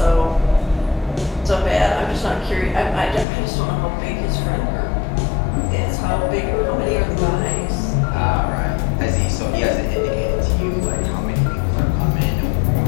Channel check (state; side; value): drops out; right; at 3.2 s